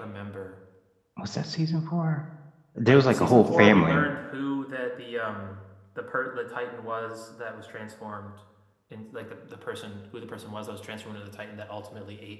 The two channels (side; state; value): both; identical; correlation 1.00